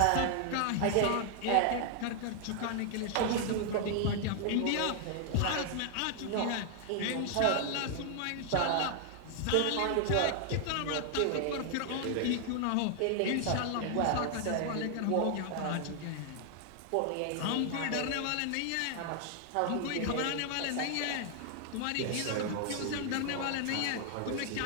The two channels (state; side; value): different; both; correlation 0.00